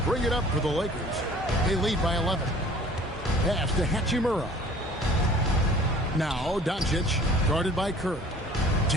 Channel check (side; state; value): both; normal; correlation 0.50